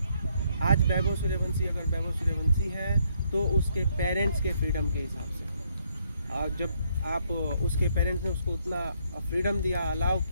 आज वैभव सूर्यवंशी अगर वैभव सूर्यवंशी है तो उसके पेरेंट्स के फ्रीडम के हिसाब से, और जब आप उसके पेरेंट्स ने उसको उतना फ्रीडम दिया, अलाउ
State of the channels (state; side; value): inverted; both; correlation -0.70